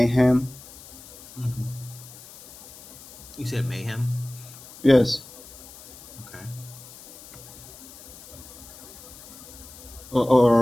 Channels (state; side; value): noise; left; hiss, 18 dB below the sound